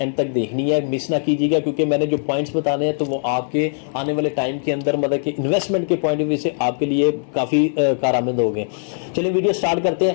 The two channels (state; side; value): silent; right; digital silence